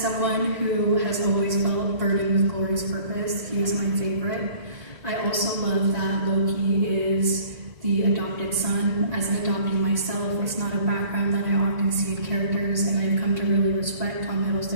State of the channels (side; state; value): left; late; 1.9 ms